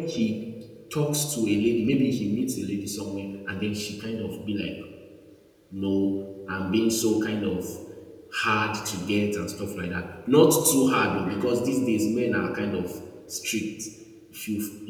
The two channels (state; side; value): identical; both; correlation 1.00